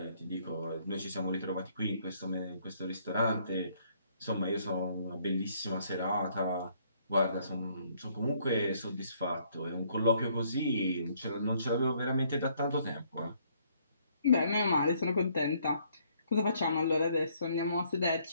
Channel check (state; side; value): inverted; both; correlation -0.66